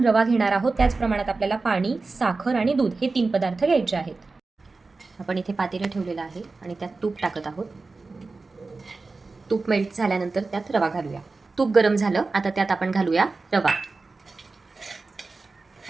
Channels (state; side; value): quieter; left; 3.8 dB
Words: रवा घेणार आहोत त्याच प्रमाणात आपल्याला पाणी, साखर आणि दूध हे 3 पदार्थ घ्यायचे आहेत। आपण इथे पातेलं ठेवलेलं आहे आणि त्यात तूप टाकत आहोत। तूप मेल्ट झाल्यानंतर त्यात रवा घालूया। तूप गरम झालं, आता त्यात आपण घालूया रवा।